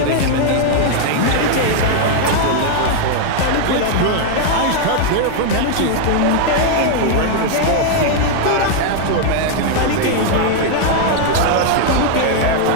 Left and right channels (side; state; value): both; different; correlation 0.00